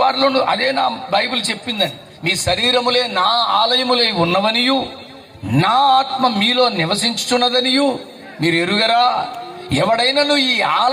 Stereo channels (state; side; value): identical; both; correlation 1.00